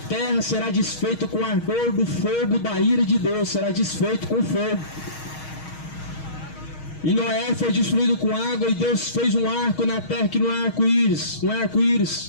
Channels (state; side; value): late; right; 6.3 ms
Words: será desfeita com o ardor do fogo da ira de Deus, será desfeito com fogo. E Noé foi destruído com água, e Deus fez um arco na terra que não é arco-íris, não é